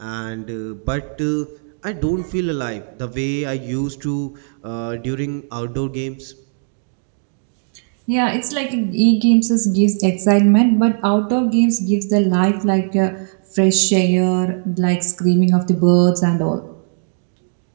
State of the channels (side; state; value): left; silent; digital silence